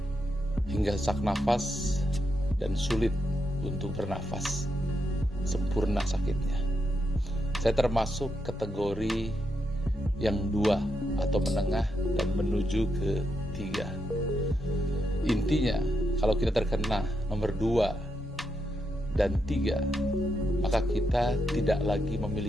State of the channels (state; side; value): normal; both; correlation 0.83